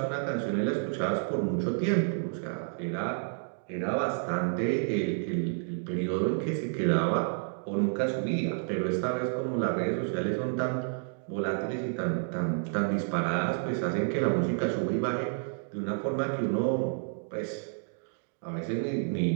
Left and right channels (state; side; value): silent; left; digital silence